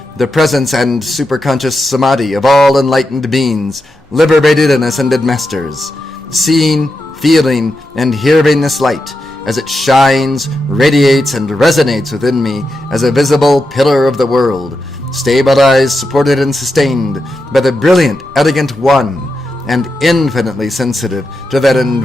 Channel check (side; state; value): both; normal; correlation 0.87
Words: the presence and superconscious Samadhi of all enlightened beings, liberated and ascended masters, seeing, feeling, and hearing this light as it shines, radiates, and resonates within me as a visible pillar of the world, stabilized, supported, and sustained by the brilliant, elegant one, and infinitely sensitive to that